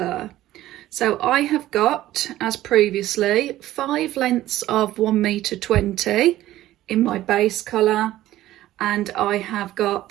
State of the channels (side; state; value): left; quieter; 14.7 dB